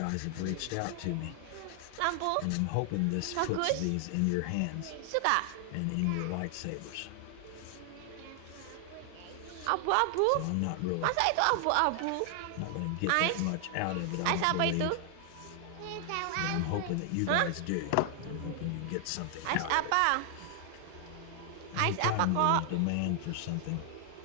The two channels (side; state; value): both; different; correlation 0.00